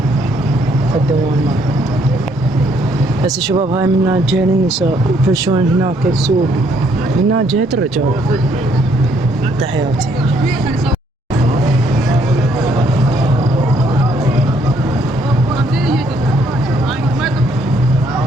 قدموا المال. هسه شباب هاي من جهة النساء يفرشون هناك السوق، من جهة الرجال. تحياتي.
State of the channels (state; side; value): normal; both; correlation 0.68